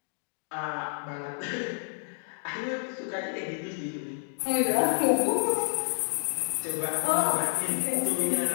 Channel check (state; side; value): silent; right; digital silence